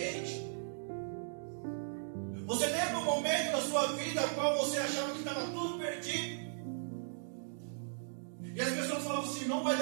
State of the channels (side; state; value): left; silent; digital silence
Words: Você lembra um momento da sua vida no qual você achava que estava tudo perdido? E as pessoas falavam assim, não vai